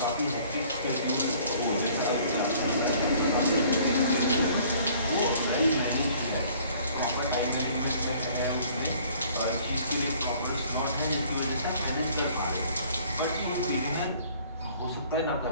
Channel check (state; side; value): inverted; both; correlation -0.56